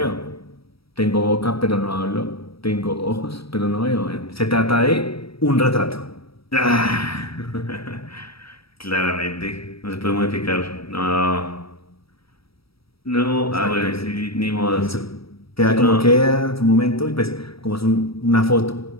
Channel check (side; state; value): right; late; 0.76 ms